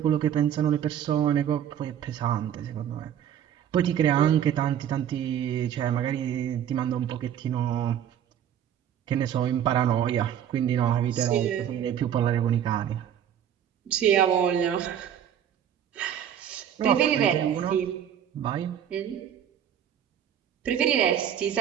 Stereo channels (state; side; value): quieter; left; 9.6 dB